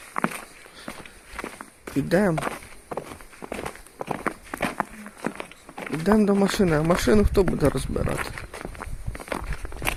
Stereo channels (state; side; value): identical; both; correlation 1.00